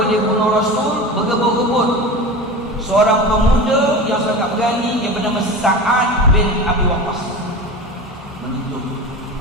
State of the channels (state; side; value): normal; both; correlation 0.30